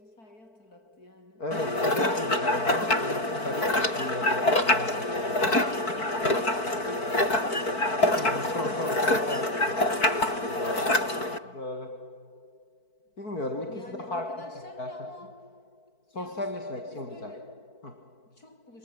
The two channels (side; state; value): right; late; 4.5 ms